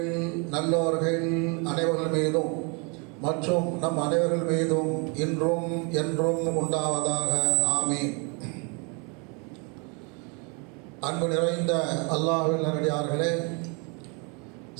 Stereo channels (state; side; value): quieter; left; 33.4 dB